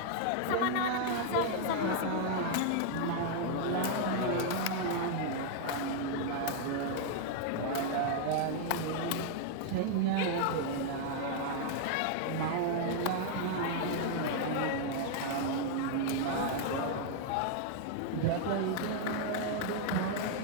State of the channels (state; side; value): different; both; correlation 0.00